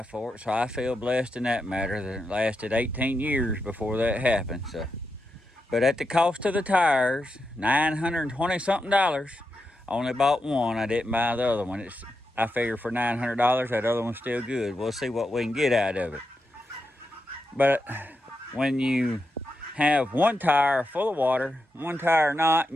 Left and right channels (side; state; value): both; normal; correlation 0.87